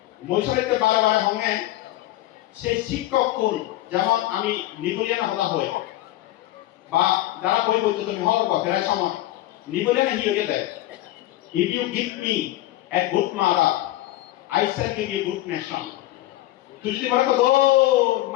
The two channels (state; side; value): quieter; right; 15.6 dB